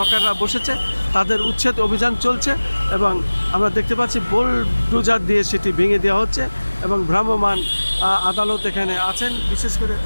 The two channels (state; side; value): inverted; both; correlation -1.00